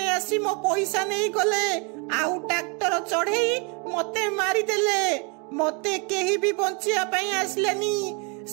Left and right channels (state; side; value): quieter; left; 32.1 dB